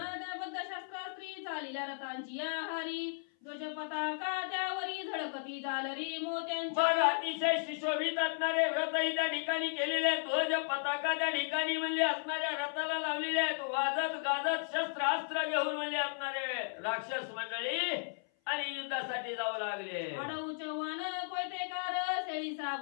शस्त्रास्त्री चालिल्या रथांची या हारी ध्वज पताका त्यावरी झळकती झालरी मोत्यांची. मग अतिशय सुशोभित असणारे रथही त्या ठिकाणी केलेले आहेत. ध्वज पताका त्या ठिकाणी म्हणले असणाऱ्या रथाला लावलेले आहेत. वाजत गाजत शस्त्रास्त्र घेऊन म्हणले असणारे राक्षस मंडळी आणि युद्धासाठी जाऊ लागले. आडऊ चव्हाण कोयतेकार शेळी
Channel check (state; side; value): silent; right; 54 dB below the other